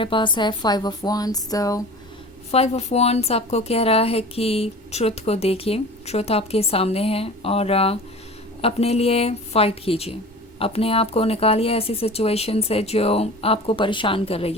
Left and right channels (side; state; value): both; normal; correlation 0.38